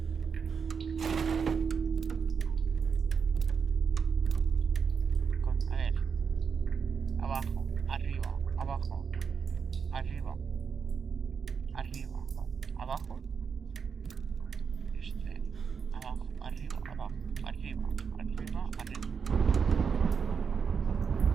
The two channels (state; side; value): quieter; left; 6.2 dB